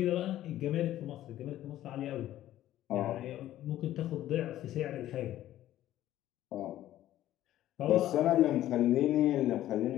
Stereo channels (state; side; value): quieter; right; 13.4 dB